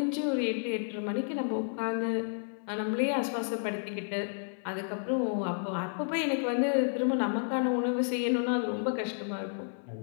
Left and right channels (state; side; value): silent; right; 57 dB below the other